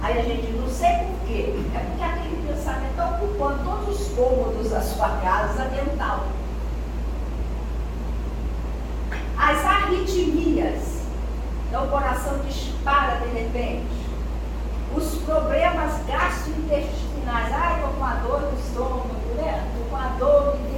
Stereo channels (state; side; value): identical; both; correlation 1.00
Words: aí a gente não sei por quê, é porque aquele pensamento está ocupando todos os cômodos da sua casa mental. As arritmias, então o coração dispara de repente. Os problemas gastrointestinais, estou com a dor no estômago, né? Estou com a dor no